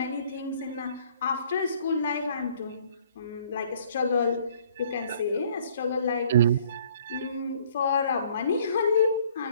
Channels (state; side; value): inverted; both; correlation -0.58